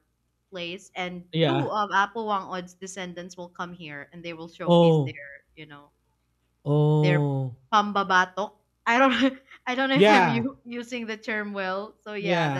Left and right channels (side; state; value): both; identical; correlation 1.00